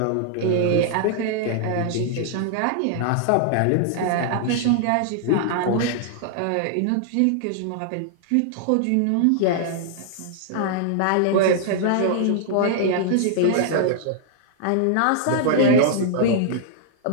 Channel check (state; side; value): different; both; correlation -0.01